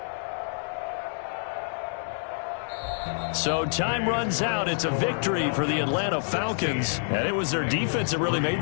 So time runs out. It's a victory for the Atlanta Falcons. And it was their defense that really made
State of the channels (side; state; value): right; silent; digital silence